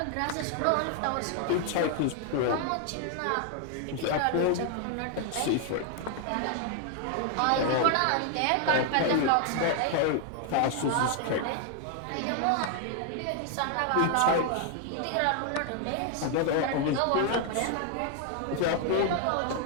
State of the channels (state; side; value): different; both; correlation 0.00